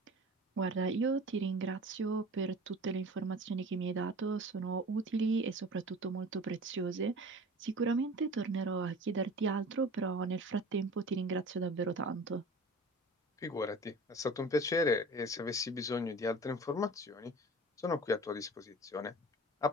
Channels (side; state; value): both; normal; correlation 0.40